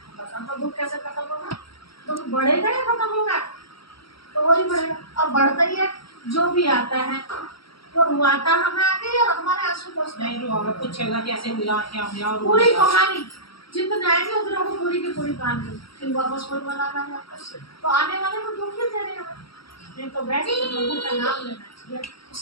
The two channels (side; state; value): right; late; 0.75 ms